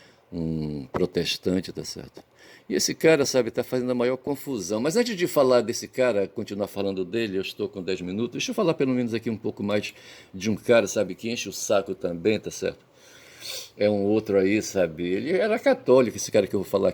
protestante, tá certo? E esse cara, sabe, está fazendo a maior confusão. Mas antes de falar desse cara, continuar falando dele, eu estou com 10 minutos, deixa eu falar pelo menos aqui um pouco mais de um cara, sabe, que enche o saco também, tá certo? É um outro aí, sabe? Ele era católico, esse cara que eu vou falar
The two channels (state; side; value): identical; both; correlation 1.00